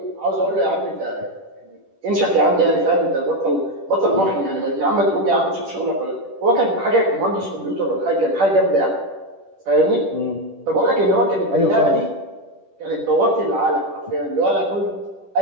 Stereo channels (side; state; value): left; late; 10 ms